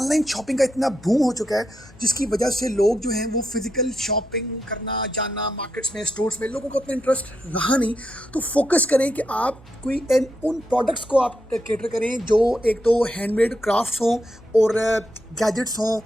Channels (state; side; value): normal; both; correlation 0.83